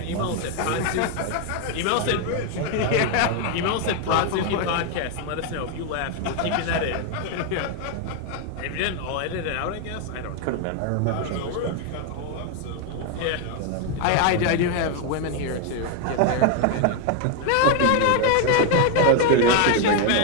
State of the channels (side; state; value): both; different; correlation 0.01